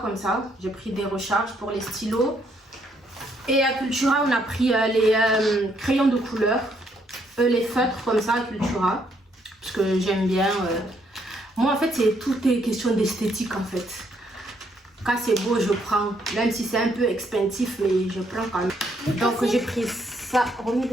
comme ça. J'ai pris des recharges pour les stylos. Et à Cultura, on a pris les crayons de couleur, les feutres comme ça à Cultura. Parce que j'aime bien. Moi, en fait, tout est question d'esthétique en fait. Quand c'est beau, je prends. Même si c'est un peu expensive, mais je prends quand même. Donc j'ai pris ça.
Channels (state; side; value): normal; both; correlation 0.72